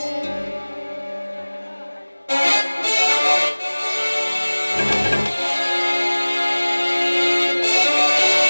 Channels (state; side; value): inverted; both; correlation -1.00